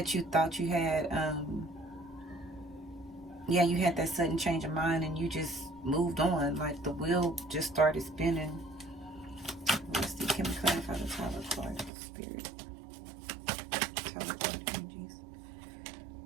you thought you had, yeah, you had that sudden change of mind and you just moved on. Like the wheel just started spinning. Let's see, can we clarify the Tower card, Spirit? Tower card energies.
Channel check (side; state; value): left; drops out; at 11.9 s